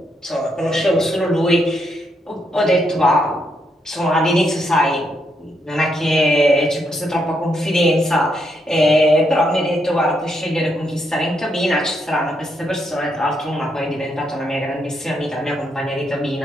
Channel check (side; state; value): both; normal; correlation 0.78